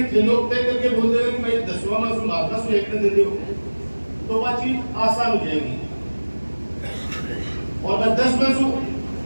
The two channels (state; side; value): inverted; both; correlation -1.00